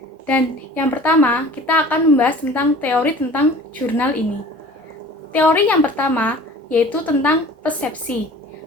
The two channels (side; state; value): both; normal; correlation 0.45